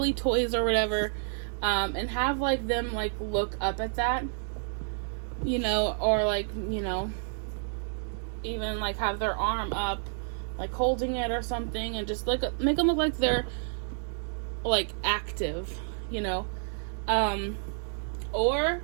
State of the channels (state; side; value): silent; left; digital silence